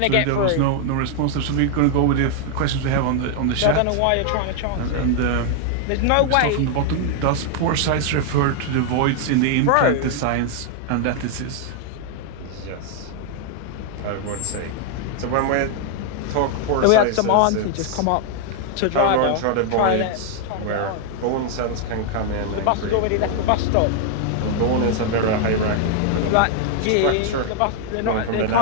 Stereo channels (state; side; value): different; both; correlation 0.00